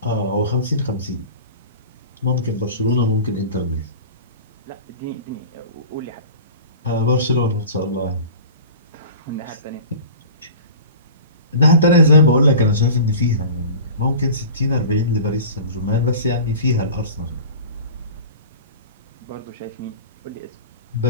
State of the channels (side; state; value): both; inverted; correlation -0.38